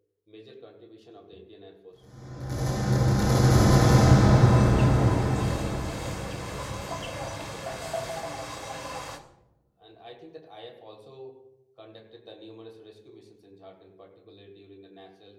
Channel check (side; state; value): both; identical; correlation 1.00